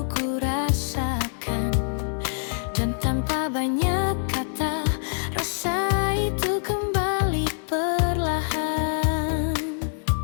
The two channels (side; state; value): right; silent; 60 dB below the other